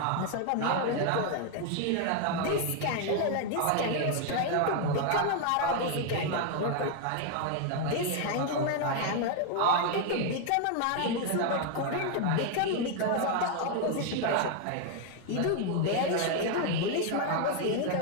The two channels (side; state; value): both; different; correlation 0.00